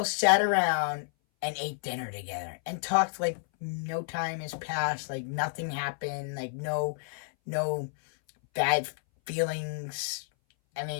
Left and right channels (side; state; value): right; silent; 58 dB below the other